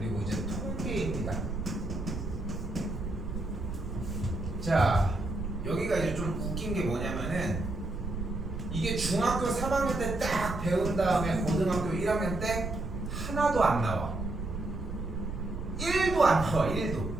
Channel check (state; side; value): noise; right; rumble, 6 dB below the sound